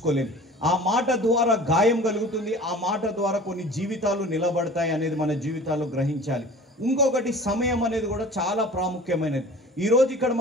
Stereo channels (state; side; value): normal; both; correlation 0.42